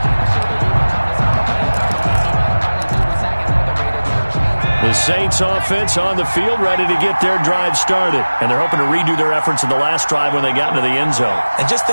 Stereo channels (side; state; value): both; inverted; correlation -1.00